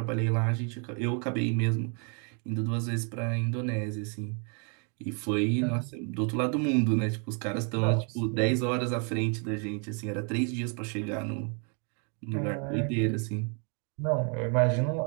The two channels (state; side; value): quieter; left; 38.8 dB